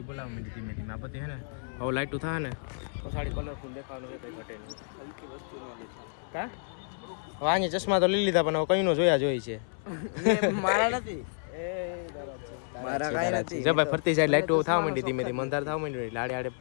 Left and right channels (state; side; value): silent; right; 58 dB below the other